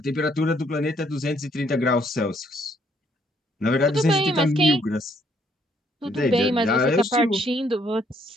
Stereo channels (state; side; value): normal; both; correlation 0.68